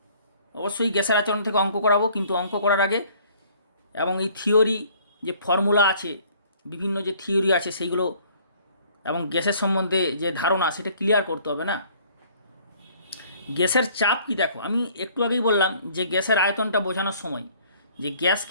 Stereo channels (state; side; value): inverted; both; correlation -0.57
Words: অবশ্যই গ্যাসের আচরণ থেকে অঙ্ক করাবো, কিন্তু অঙ্ক করার আগে এবং এই থিওরি যে ফর্মুলা আছে, বিভিন্ন যে থিওরি আছে সেইগুলো এবং গ্যাসের সম্বন্ধে যে ধারণা সেটা ক্লিয়ার করতে হবে না। গ্যাসের চাপ কি দেখো, আমি একটু আগেই বললাম যে গ্যাসের আয়তনটা বোঝানোর সময় যে